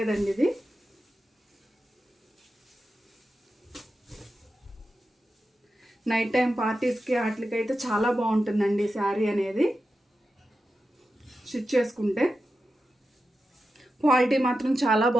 ఇది నైట్ టైం పార్టీస్కి వాటికైతే చాలా బాగుంటుందండి శారీ అనేది స్టిచ్ చేసుకుంటే. క్వాలిటీ మాత్రం చాలా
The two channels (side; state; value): both; normal; correlation 0.91